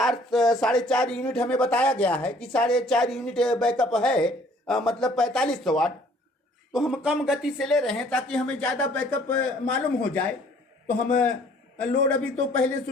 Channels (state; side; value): normal; both; correlation 0.58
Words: 4.5 यूनिट हमें बताया गया है कि 4.5 यूनिट बैकअप है, मतलब 4500 वाट। तो हम कम गति से ले रहे हैं ताकि हमें ज़्यादा बैकअप मालूम हो जाए। तो हम लोड अभी तो पहले